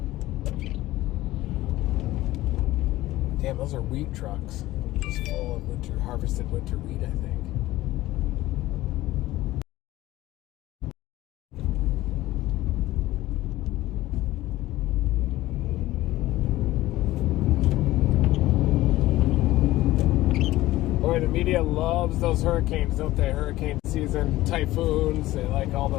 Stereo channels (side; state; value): right; quieter; 16.6 dB